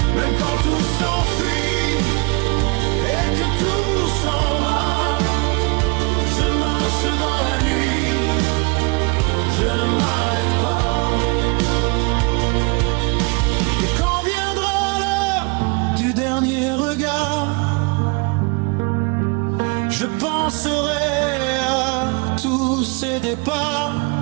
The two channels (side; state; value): left; quieter; 29.6 dB